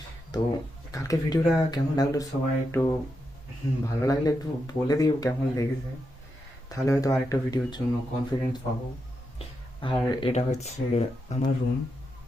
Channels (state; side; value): normal; both; correlation 0.85